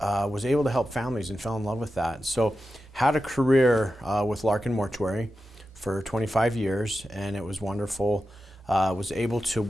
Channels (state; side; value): normal; both; correlation 0.91